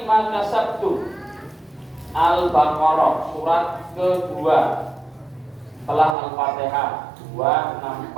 ma kasabtum. Al-Baqarah surat kedua setelah Al-Fatihah 264,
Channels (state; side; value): drops out; left; at 6.2 s